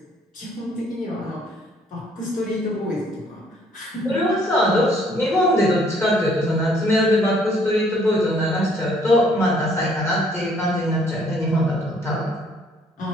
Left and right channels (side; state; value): both; normal; correlation 0.63